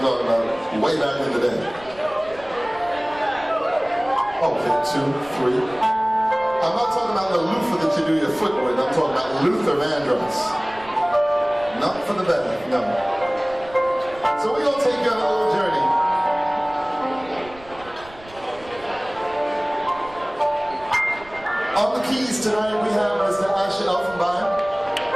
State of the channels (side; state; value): right; noise; rumble, 21 dB below the sound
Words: talking about way back in the day. Okay, 2, 3. I'm not talking about the loofah that you do your foot with. I'm talking about Luther Vandross. Not for the better, no. So we're going to take you on a little journey. On the keys tonight we have Mr. Shaha.